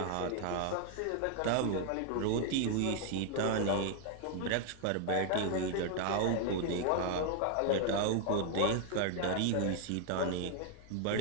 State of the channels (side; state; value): both; different; correlation 0.00